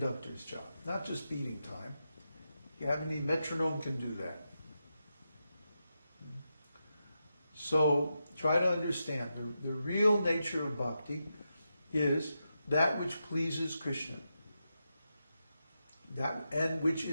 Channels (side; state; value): both; inverted; correlation -0.87